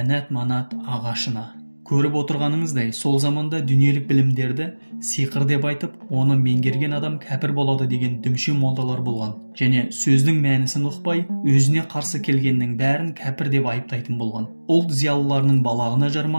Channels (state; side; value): inverted; both; correlation -1.00